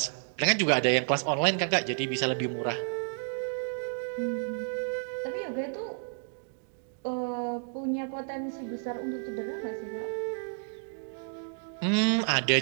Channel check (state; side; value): silent; left; 57 dB below the other